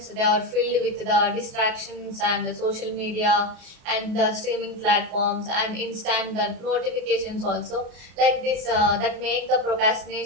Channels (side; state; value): left; late; 33 ms